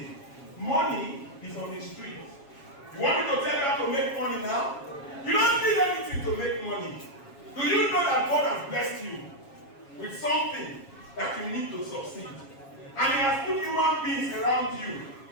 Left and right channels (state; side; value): late; right; 7.3 ms